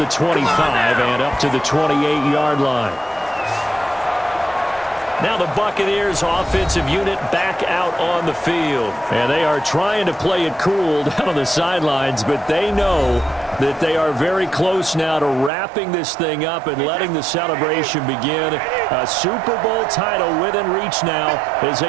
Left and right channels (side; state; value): left; drops out; at 15.5 s